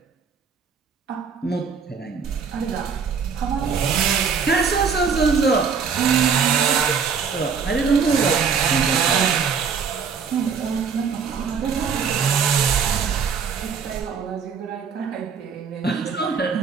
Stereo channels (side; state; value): left; quieter; 6.1 dB